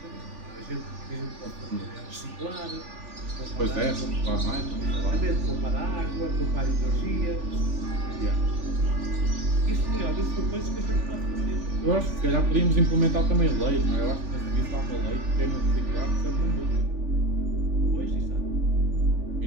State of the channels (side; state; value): left; late; 3.4 ms